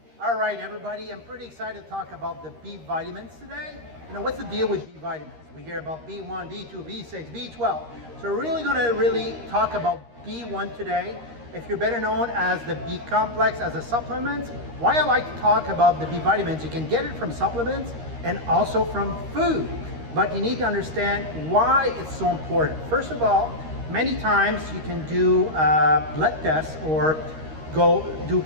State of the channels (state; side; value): late; left; 13 ms